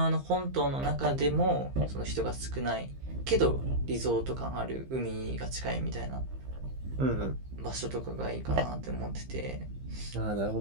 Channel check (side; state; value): left; late; 15 ms